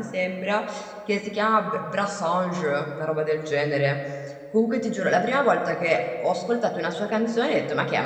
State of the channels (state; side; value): identical; both; correlation 1.00